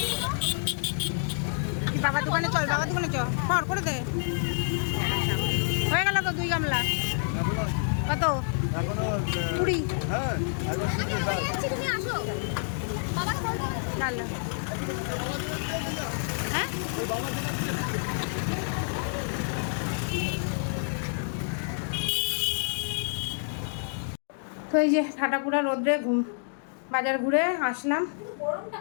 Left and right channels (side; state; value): right; silent; digital silence